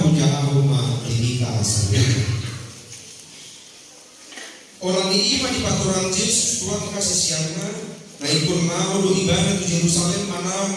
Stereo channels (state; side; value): identical; both; correlation 1.00